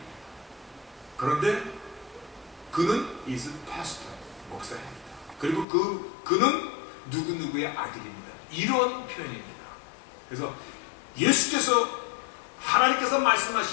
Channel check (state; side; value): drops out; right; at 5.7 s